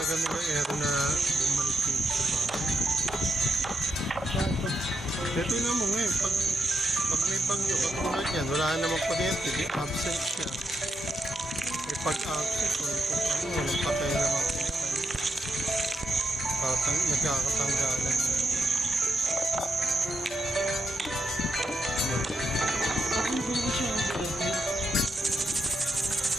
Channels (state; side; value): normal; both; correlation 0.82